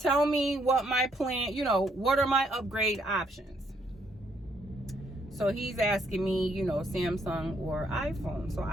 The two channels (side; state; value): both; normal; correlation 0.71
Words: me what my plan, you know, what are my upgrade options? So he's asking me, you know, Samsung or iPhone. So